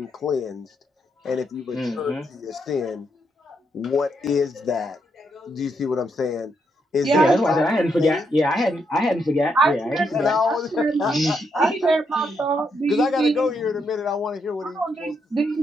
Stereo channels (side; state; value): both; normal; correlation 0.78